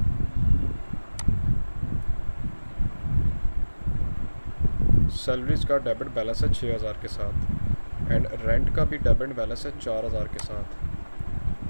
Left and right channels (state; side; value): inverted; both; correlation -1.00